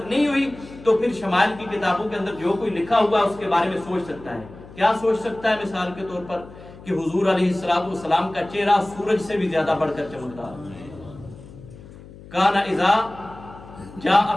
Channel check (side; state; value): left; noise; hum, 18 dB below the sound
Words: نہیں ہوئی، تو پھر شمائل کی کتابوں کے اندر جو کوئی لکھا ہوا ہے اس کے بارے میں سوچ سکتا ہے. کیا سوچ سکتا ہے؟ مثال کے طور پر کہ حضور علیہ السلام کا چہرہ سورج سے بھی زیادہ بڑھ کر چمکتا ہے. کان اذا جاء